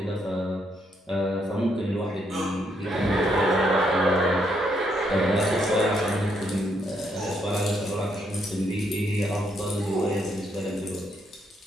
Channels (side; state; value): both; normal; correlation 0.75